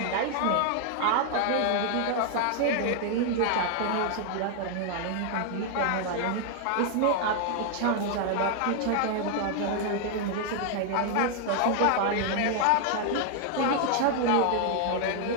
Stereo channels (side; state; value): both; different; correlation 0.00